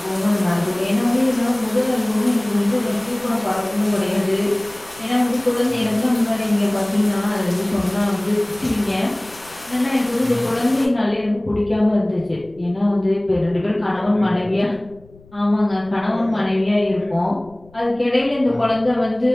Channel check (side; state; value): left; noise; rumble, 25 dB below the sound